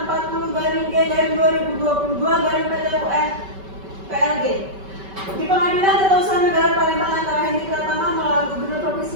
40-G-2022 PLG. Di pengadilan tata usaha negara Palembang antara Hendy Pratama melawan Gubernur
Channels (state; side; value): late; left; 5.2 ms